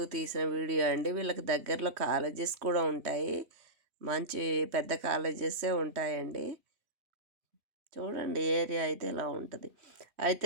తీసిన వీడియో అండి. వీళ్ళకి దగ్గరలో కాలేజెస్ కూడా ఉంటాయి. మంచి పెద్ద కాలేజెసే ఉంటాయండి. చూడండి ఏరియా అయితే ఇలా ఉంటది.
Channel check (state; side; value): late; left; 3.2 ms